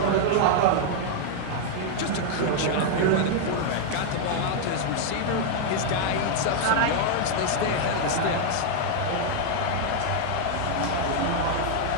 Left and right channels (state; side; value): different; both; correlation 0.00